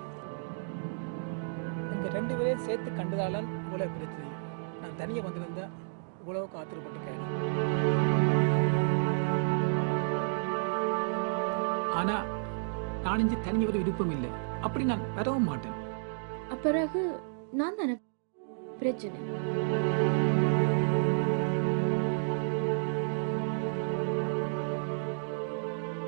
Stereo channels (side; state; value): left; silent; digital silence